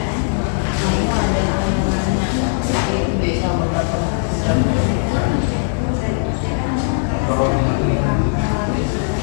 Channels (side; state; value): right; silent; digital silence